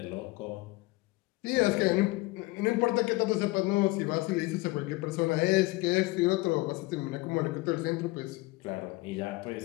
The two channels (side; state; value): right; quieter; 21.6 dB